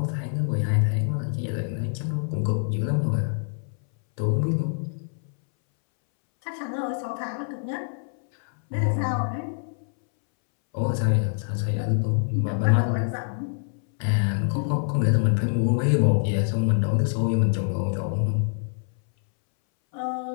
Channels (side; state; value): right; silent; 62 dB below the other